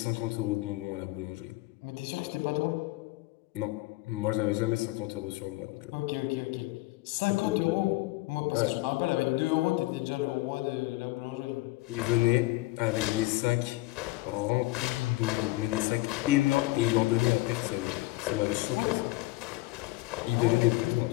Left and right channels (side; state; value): right; quieter; 20.1 dB